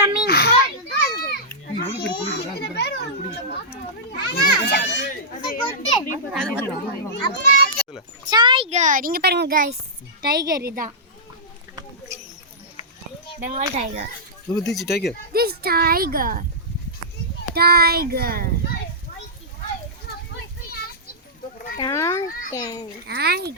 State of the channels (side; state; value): both; normal; correlation -0.15